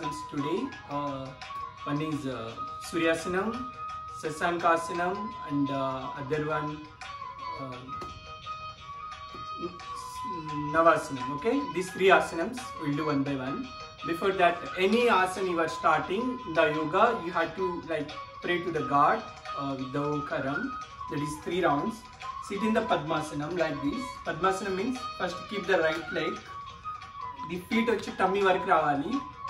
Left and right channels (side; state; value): both; identical; correlation 1.00